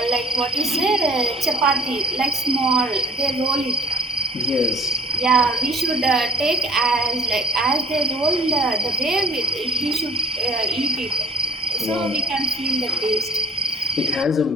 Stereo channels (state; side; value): normal; both; correlation 0.48